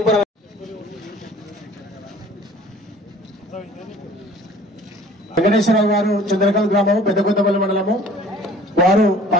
వెంకటేశ్వరరావు గారు చంద్రకాంత్ గ్రామం పెద్దకొత్తపల్లి మండలము. వారు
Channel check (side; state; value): both; normal; correlation 0.50